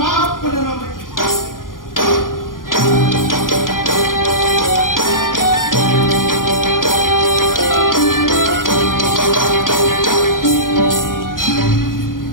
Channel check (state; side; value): late; right; 0.90 ms